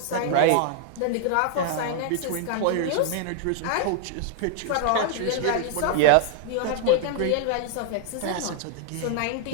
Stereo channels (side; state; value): both; different; correlation 0.00